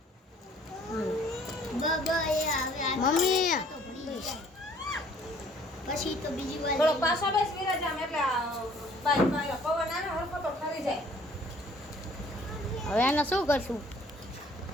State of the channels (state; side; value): normal; both; correlation 0.57